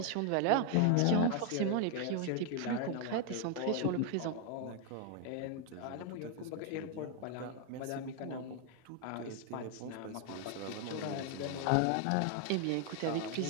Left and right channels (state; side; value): different; both; correlation 0.00